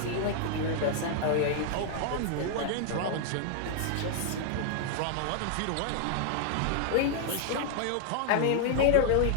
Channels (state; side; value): different; both; correlation 0.00